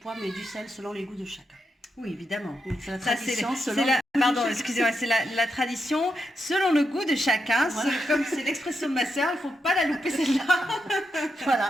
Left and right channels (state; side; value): normal; both; correlation 0.84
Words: mais du sel selon les goûts de chacun. Oui, évidemment. C'est la tradition c'est la tradition selon le goût de chacun. Voilà. Comme c'est l'expression de ma sœur, il ne faut pas la louper celle-là.